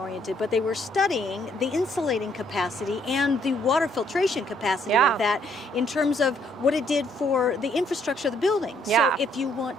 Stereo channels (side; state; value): both; normal; correlation 0.68